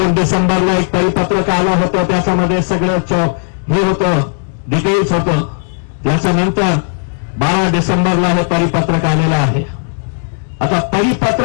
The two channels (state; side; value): silent; right; 71 dB below the other